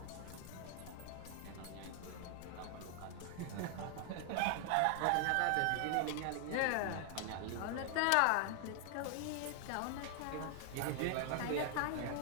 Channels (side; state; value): both; different; correlation 0.00